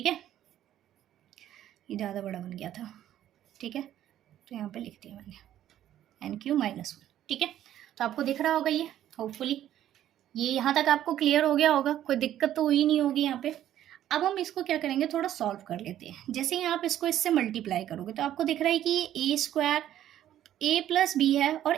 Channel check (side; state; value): left; quieter; 11.9 dB